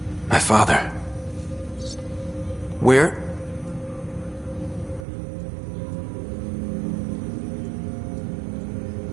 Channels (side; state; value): left; drops out; at 5.1 s